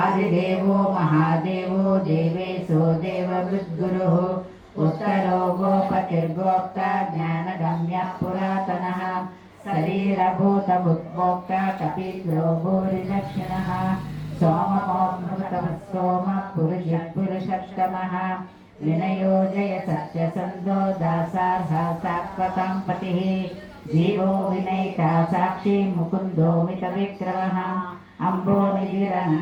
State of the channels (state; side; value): identical; both; correlation 1.00